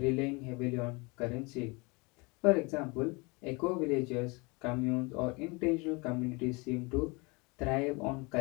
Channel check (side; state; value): right; quieter; 28.0 dB